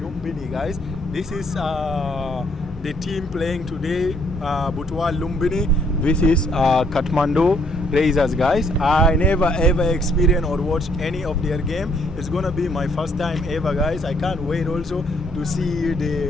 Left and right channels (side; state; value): both; normal; correlation 0.67